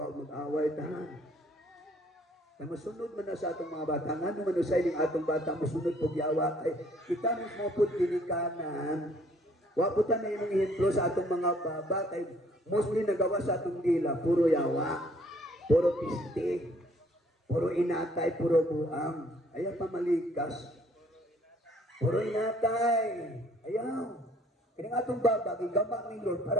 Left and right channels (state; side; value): normal; both; correlation 0.61